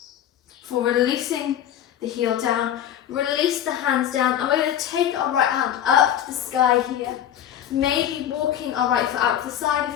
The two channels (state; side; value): quieter; right; 10.4 dB